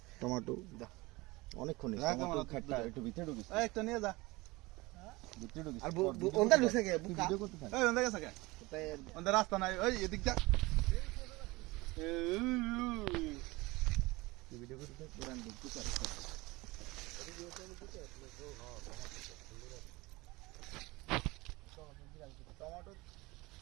টমেটো অনেকক্ষণ একটু ভিতরে ঢুকিস একটা নিয়ে যা ভিতরে ঢুকিস আর ওন্দা ঢুকছে কে বুকা ভিডিও করতে থাক এই ওন্দা গেছে কে ওন্দা রাস্তা নাই ওই এদিক যা ভিডিও করতে থাক পুরান ঢুকতে পারে টমেটো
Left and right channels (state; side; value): quieter; left; 22.2 dB